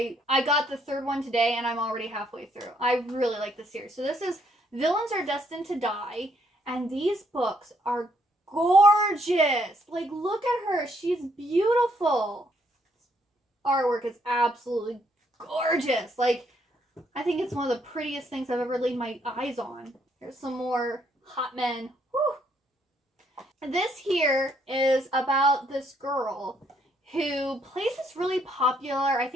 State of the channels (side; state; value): both; normal; correlation 0.70